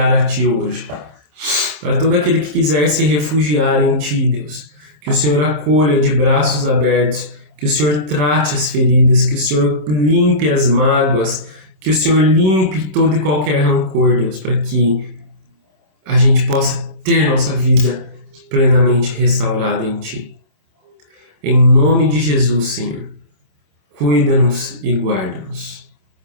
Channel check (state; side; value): late; left; 26 ms